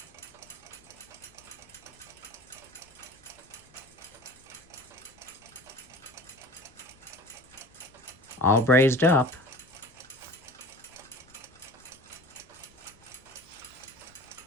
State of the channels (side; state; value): left; noise; rumble, 27 dB below the sound